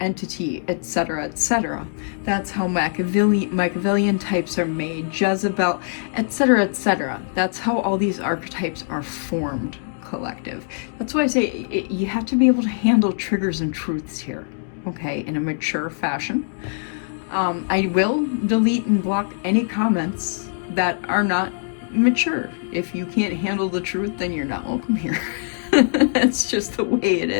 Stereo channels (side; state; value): right; silent; digital silence